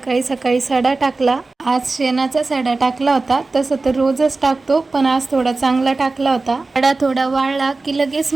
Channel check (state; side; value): quieter; left; 3.6 dB